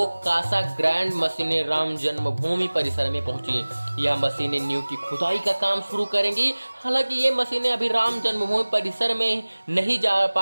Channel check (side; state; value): both; inverted; correlation -1.00